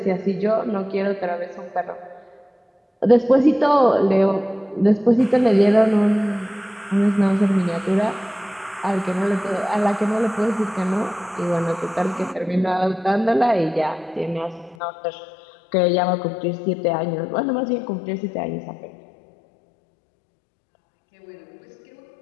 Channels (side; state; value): right; drops out; at 14.8 s